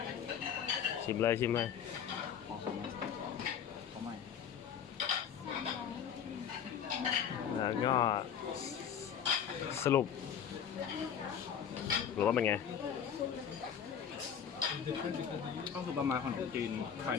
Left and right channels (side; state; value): right; quieter; 8.2 dB